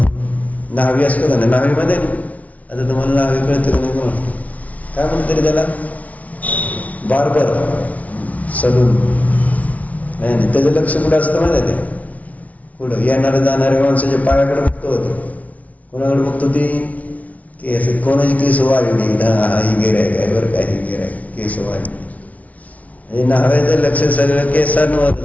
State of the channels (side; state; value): right; late; 0.069 ms